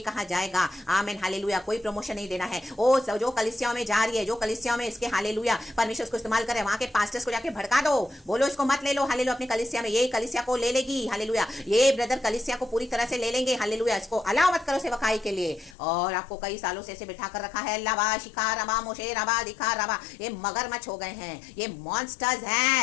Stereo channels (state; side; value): drops out; right; at 15.8 s